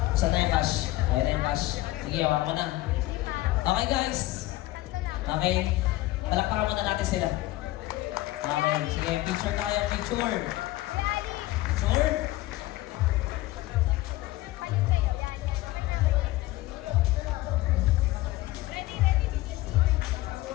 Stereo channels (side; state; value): right; quieter; 17.5 dB